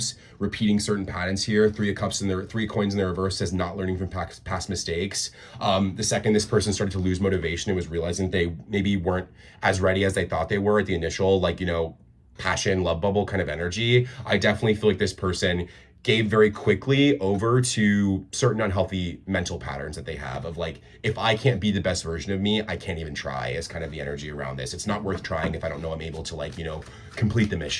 repeating certain patterns here, Three of Cups and their Three Coins in the reverse says not learning from past mistakes. The second this person started to lose motivation and was realizing they maybe weren't as ready as they thought they were at the initial, like, you know, passion, love bubble kind of energy, I definitely feel like this person gave very quickly over to certain unhealthy mental patterns that they have of like, if I can't be the best version of me, I can't even try, is kind of the energy around this. It's not worth trying if I don't know I'm able to, like, you know, complete the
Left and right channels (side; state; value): both; identical; correlation 1.00